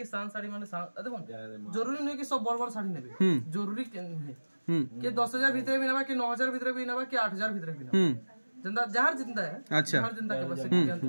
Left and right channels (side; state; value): both; inverted; correlation -1.00